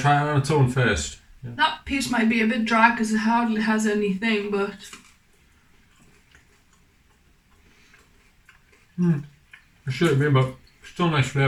it on its own first? Yeah. That piece might be a bit dry because it hardly has anything, but it should be, but still nice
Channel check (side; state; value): both; identical; correlation 1.00